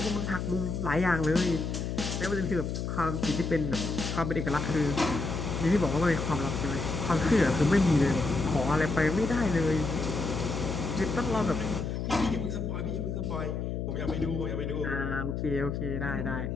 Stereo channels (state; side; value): noise; left; hum, 3 dB below the sound